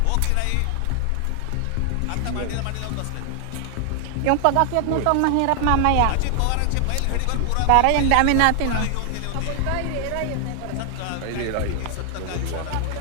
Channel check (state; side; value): different; both; correlation 0.00